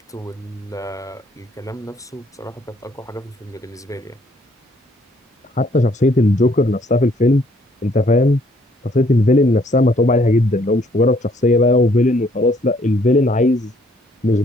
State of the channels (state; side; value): normal; both; correlation 0.65